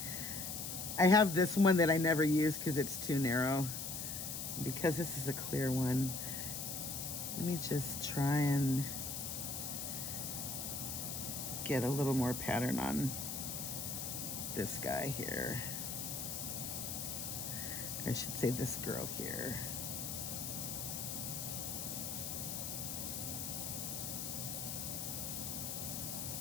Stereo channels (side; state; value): left; noise; hiss, 4 dB below the sound